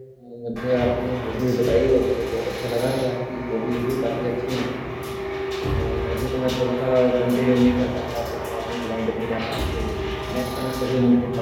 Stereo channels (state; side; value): identical; both; correlation 1.00